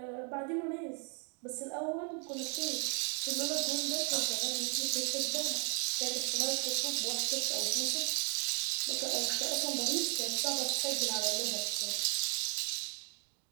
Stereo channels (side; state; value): left; quieter; 37.2 dB